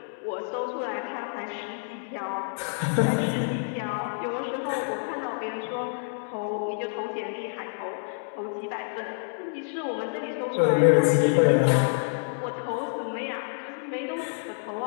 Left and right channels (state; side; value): silent; right; digital silence